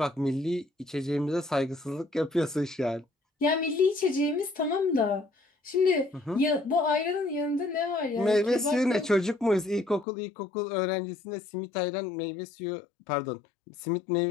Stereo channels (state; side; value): drops out; right; at 10.1 s